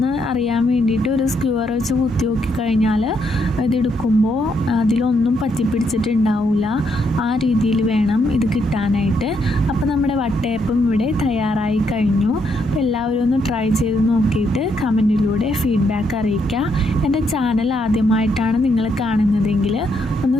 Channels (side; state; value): both; normal; correlation 0.76